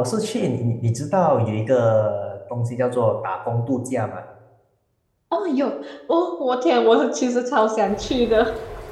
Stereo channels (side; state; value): both; identical; correlation 1.00